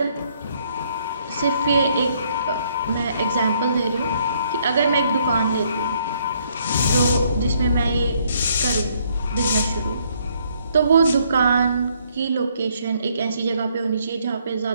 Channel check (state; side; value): inverted; both; correlation -0.68